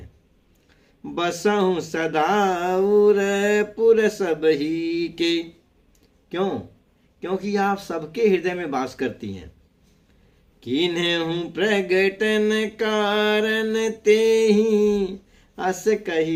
बसहु सदा उर पुर सब ही के, क्यों? क्योंकि आप सबके हृदय में वास करती हैं। किन्हु प्रगटन कारण तेहि, अस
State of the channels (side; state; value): both; identical; correlation 1.00